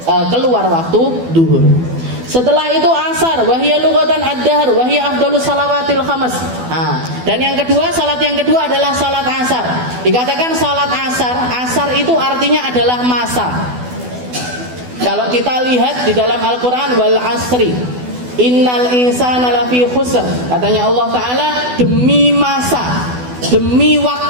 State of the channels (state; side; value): late; left; 12 ms